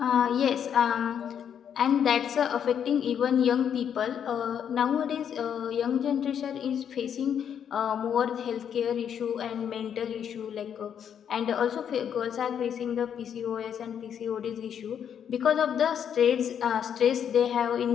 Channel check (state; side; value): quieter; right; 8.5 dB